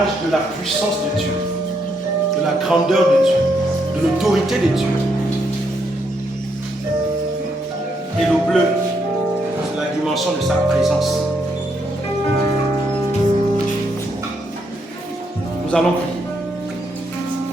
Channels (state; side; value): normal; both; correlation 0.76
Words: de la puissance de Dieu. de la grandeur de Dieu, de l'autorité de Dieu. Et le bleu, c'est la dimension de sa présence. Nous allons prier.